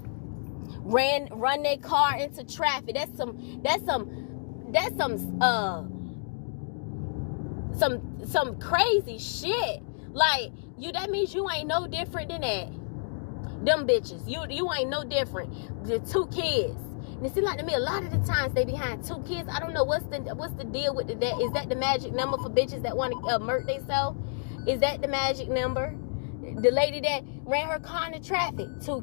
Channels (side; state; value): right; silent; digital silence